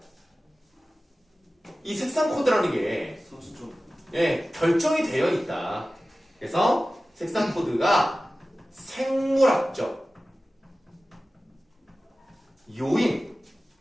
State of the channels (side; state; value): both; normal; correlation 0.96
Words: 이 색상 코드라는 게 선수적. 예, 결정이 되어 있다. 그래서 색상 코드가 생물학적 요인,